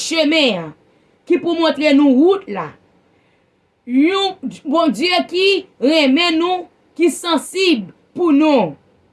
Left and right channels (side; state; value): both; identical; correlation 1.00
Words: qui pour montrer nous route là. Un bon Dieu qui remet nous, qui sensible pour nous